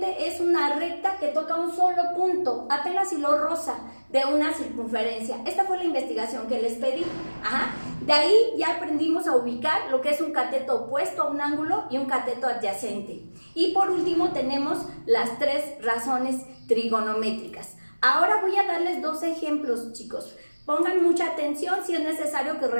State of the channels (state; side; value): inverted; both; correlation -1.00